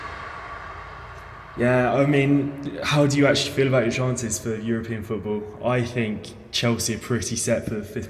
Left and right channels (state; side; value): identical; both; correlation 1.00